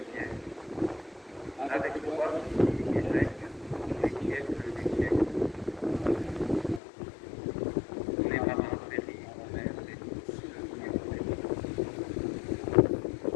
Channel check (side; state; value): right; drops out; at 6.8 s